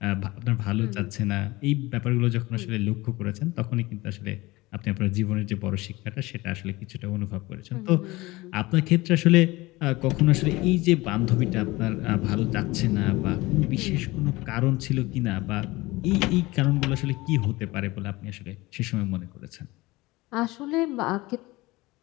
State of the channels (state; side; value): quieter; right; 20.9 dB